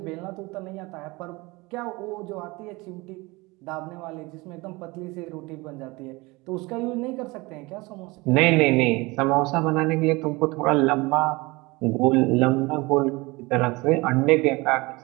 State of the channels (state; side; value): quieter; left; 23.6 dB